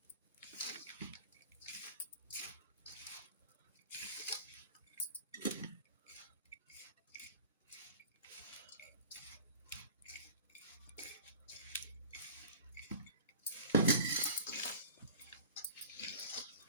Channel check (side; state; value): both; inverted; correlation -0.41